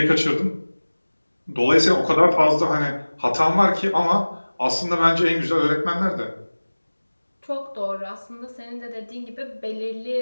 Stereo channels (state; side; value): inverted; both; correlation -1.00